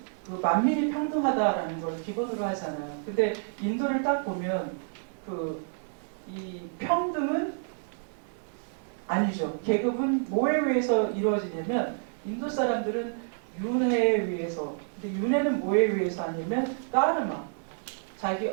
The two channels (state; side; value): silent; left; 59 dB below the other